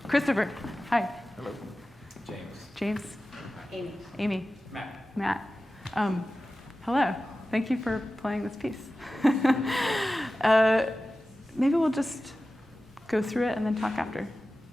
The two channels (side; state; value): both; normal; correlation 0.95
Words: Christopher. Hi. Hello. James. James. Amy. Amy. Matt. Hello. Thank you for playing this piece. Maybe we'll just go through it and then talk after.